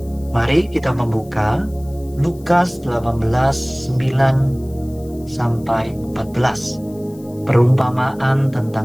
Mari kita membuka Lukas 18:9-14, perumpamaan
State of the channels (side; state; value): left; noise; hiss, 26 dB below the sound